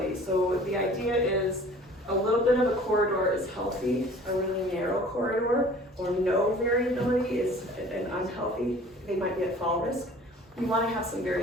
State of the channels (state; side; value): normal; both; correlation 0.48